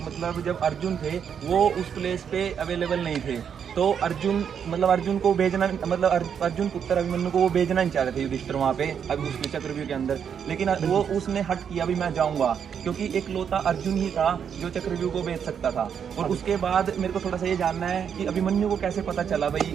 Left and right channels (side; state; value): left; quieter; 7.7 dB